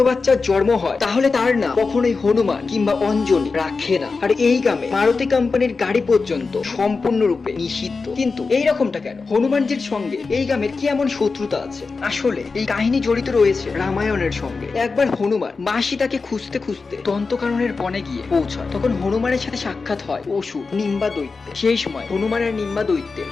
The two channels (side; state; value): right; quieter; 4.4 dB